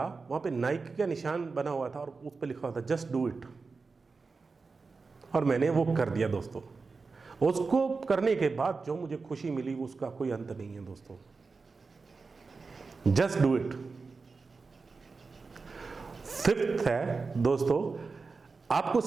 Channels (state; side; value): quieter; left; 4.4 dB